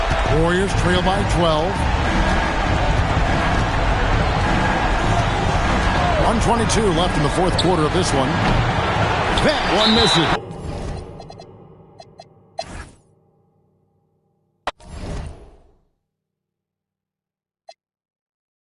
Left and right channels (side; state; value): both; identical; correlation 1.00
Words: Warriors trail by 12. 1:22 left in the fourth quarter of this one. That one misses.